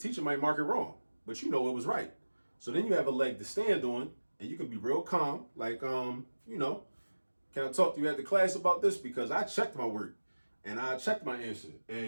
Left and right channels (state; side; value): inverted; both; correlation -1.00